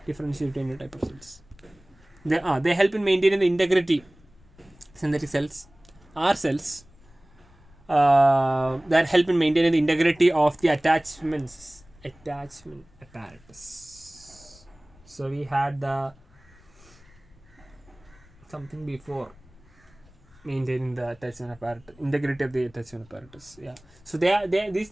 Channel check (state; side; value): noise; left; rumble, 27 dB below the sound